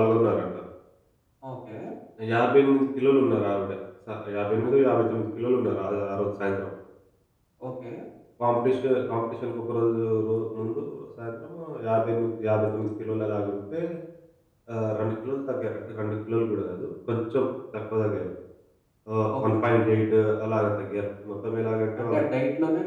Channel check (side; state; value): both; identical; correlation 1.00